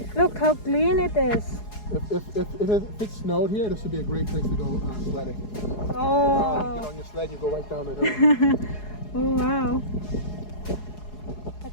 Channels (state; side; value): late; right; 4.8 ms